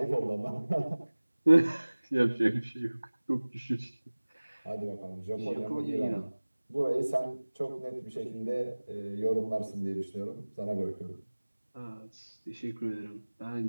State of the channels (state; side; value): inverted; both; correlation -1.00